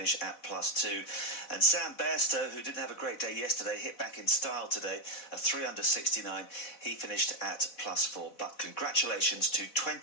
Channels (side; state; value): right; late; 4.1 ms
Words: at +2. And Sam Bairstow, who didn't have a great day yesterday, hit back in style today, a 3 under 69. He finished at +4. But congratulations to